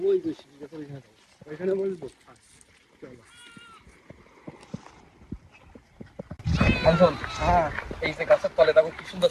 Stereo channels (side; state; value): both; identical; correlation 1.00